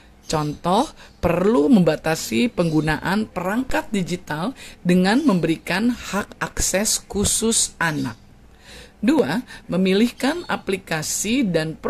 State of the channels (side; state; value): both; identical; correlation 1.00